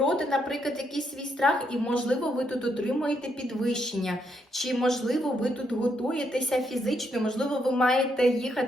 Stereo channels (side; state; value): both; normal; correlation 0.76